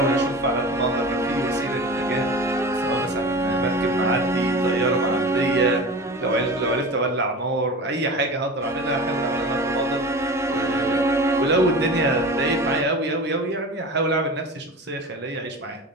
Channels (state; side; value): normal; both; correlation 0.33